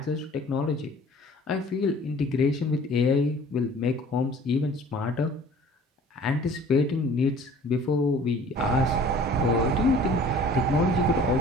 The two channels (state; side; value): normal; both; correlation 0.49